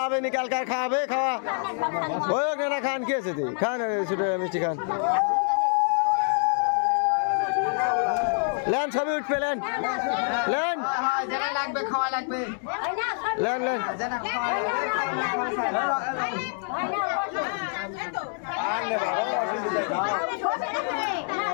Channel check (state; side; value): silent; right; 61 dB below the other